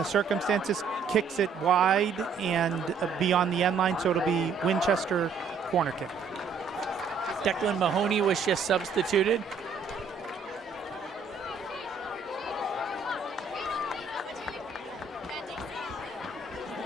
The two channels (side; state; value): left; quieter; 5.2 dB